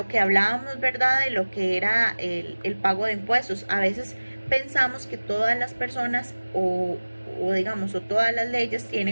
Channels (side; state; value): both; inverted; correlation -1.00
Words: que hablábamos, ¿verdad?, de lo que era el pago de impuestos. A veces pensamos que todas las personas o todas las leyes